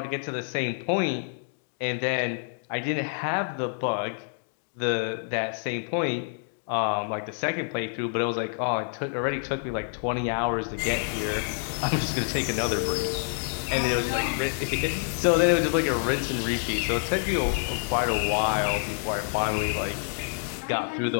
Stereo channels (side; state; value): right; silent; digital silence